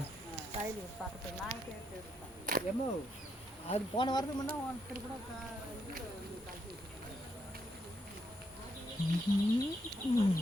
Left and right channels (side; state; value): both; normal; correlation 0.77